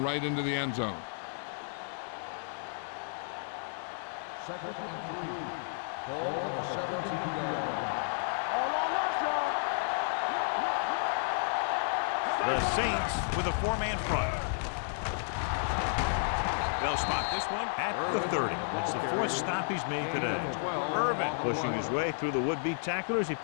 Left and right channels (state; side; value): silent; right; digital silence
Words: right into the end zone. Second and 3. Ball on the 17-yard line. The Saints with a four-man front. They'll spot this one at the 30. It's the fourth stop he's made today. Irvin pushing his way through the would-be tacklers. He